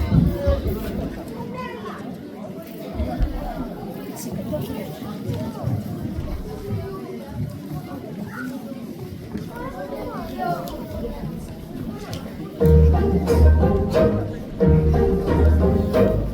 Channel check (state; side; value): identical; both; correlation 1.00